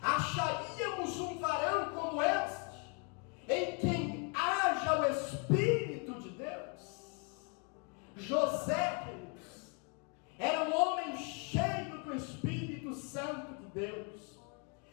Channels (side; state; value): right; quieter; 34.2 dB